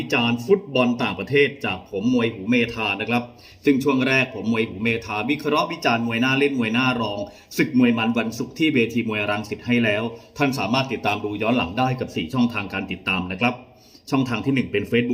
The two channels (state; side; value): identical; both; correlation 1.00